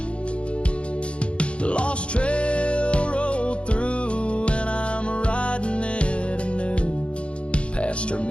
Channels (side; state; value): right; late; 0.059 ms